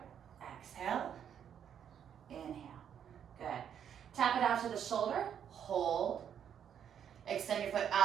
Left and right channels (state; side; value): quieter; left; 8.7 dB